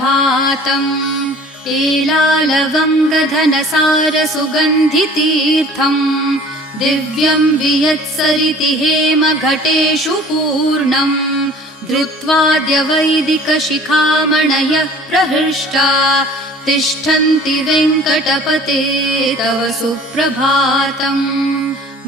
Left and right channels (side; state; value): both; normal; correlation 0.48